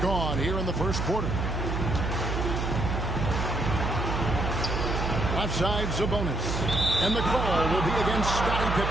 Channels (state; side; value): noise; right; hum, 1 dB below the sound